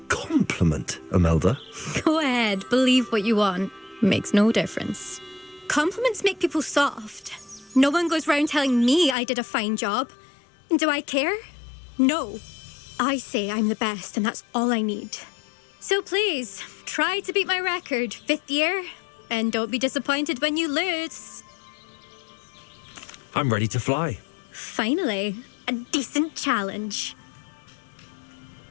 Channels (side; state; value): right; drops out; at 9.2 s